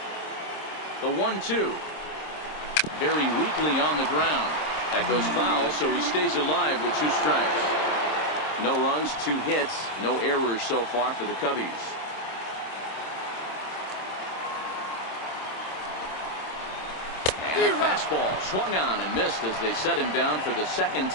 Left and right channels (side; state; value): right; late; 26 ms